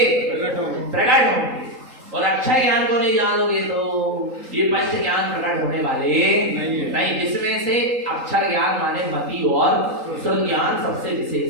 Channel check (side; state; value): left; late; 3.8 ms